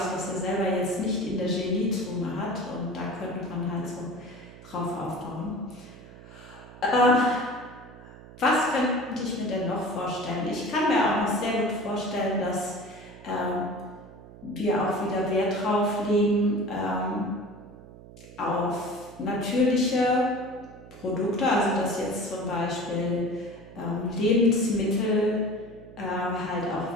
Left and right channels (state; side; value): noise; right; hum, 18 dB below the sound